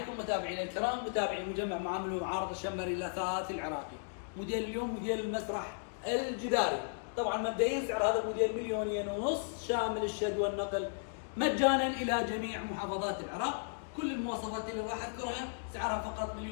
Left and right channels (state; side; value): silent; right; digital silence